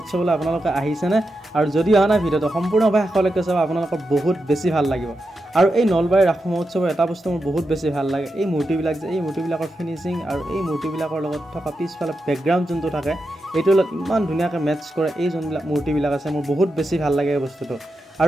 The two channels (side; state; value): both; normal; correlation 0.88